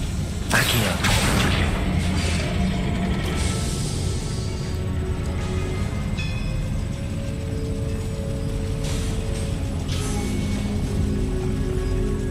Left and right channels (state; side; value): identical; both; correlation 1.00